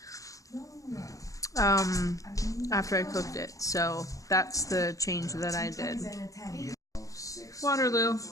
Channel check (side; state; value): right; late; 0.16 ms